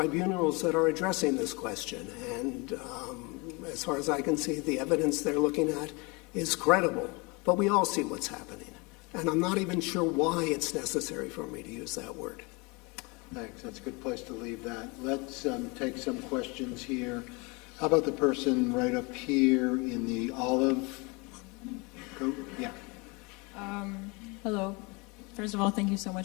that are addressing this question, and as far as I can see, the evidence they're looking at is credible. But we all see what's happening, and I'm not even sure why it's necessary for me to use that word. Thanks. That's a good place to leave that. Let's take some questions here. How about the person right up here in the olive coat? Yeah. Hello. First of all, thank you so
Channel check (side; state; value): right; quieter; 28.2 dB